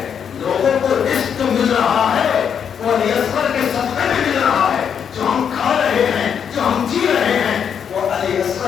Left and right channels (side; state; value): right; quieter; 7.7 dB